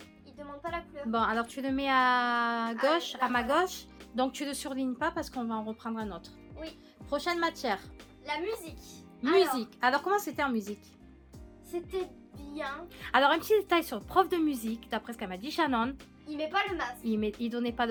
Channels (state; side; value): identical; both; correlation 1.00